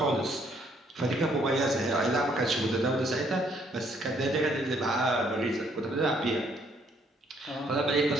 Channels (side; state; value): both; normal; correlation 0.67